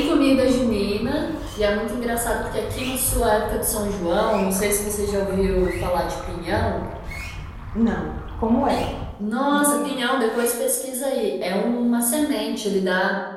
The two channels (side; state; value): both; identical; correlation 1.00